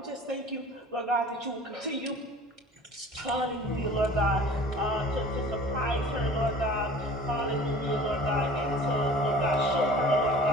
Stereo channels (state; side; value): normal; both; correlation 0.44